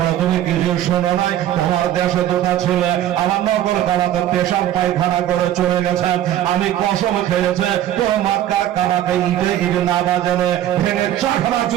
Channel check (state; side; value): quieter; left; 12.2 dB